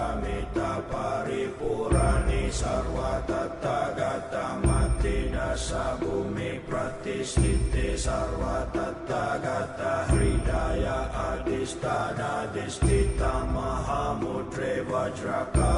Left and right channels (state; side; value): identical; both; correlation 1.00